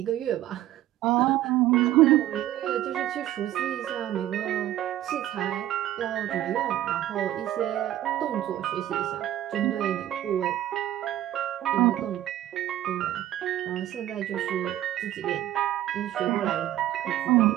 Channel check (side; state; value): left; quieter; 13.3 dB